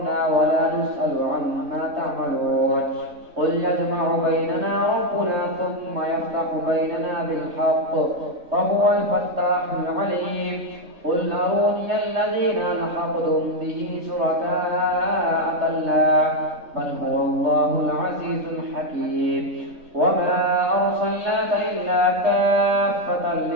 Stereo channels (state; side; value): late; left; 3.2 ms